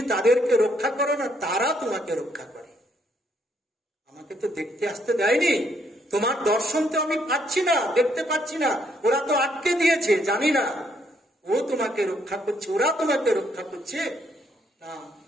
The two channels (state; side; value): normal; both; correlation 0.71